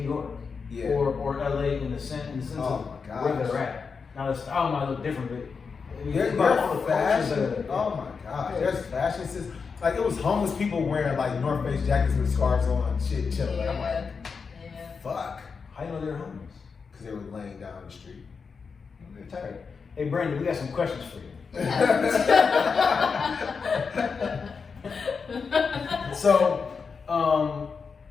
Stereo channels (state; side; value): quieter; right; 5.4 dB